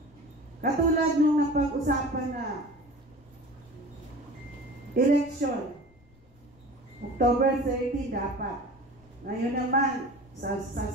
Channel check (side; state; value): left; noise; rumble, 28 dB below the sound